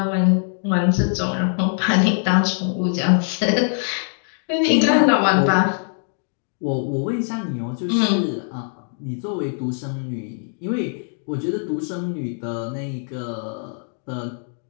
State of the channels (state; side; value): silent; right; 59 dB below the other